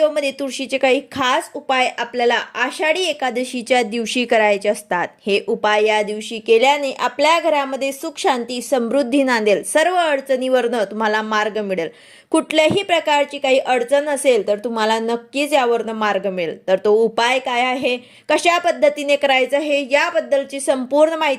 तुळशीचे काही खास उपाय आपल्याला आषाढी एकादशीच्या दिवशी करायचे असतात. हे उपाय या दिवशी केल्याने आपल्या घरामध्ये सुख शांती समृद्धी नांदेल. सर्व अडचणीवरनं तुम्हाला मार्ग मिळेल. कुठल्याही प्रकारची काही अडचण असेल तर तुम्हाला नक्कीच यावरनं मार्ग मिळेल. तर तो उपाय काय आहे, कशा पद्धतीने करायचं आहे, याबद्दलची संपूर्ण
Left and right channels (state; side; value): identical; both; correlation 1.00